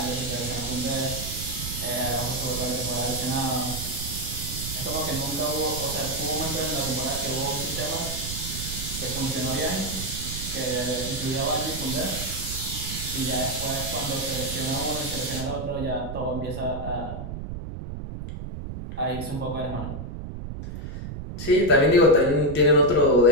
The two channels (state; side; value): noise; right; rumble, 7 dB below the sound